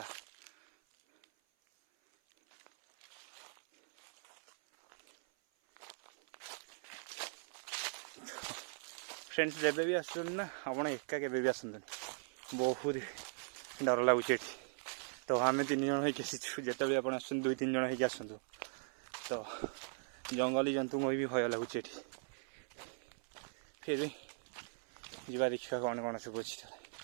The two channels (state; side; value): silent; left; 51 dB below the other